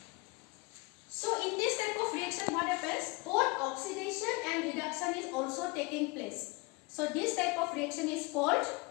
So in this type of reaction, what happens? Both oxidation and reduction is also taking place. So this type of reaction is called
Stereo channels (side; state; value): right; quieter; 26.2 dB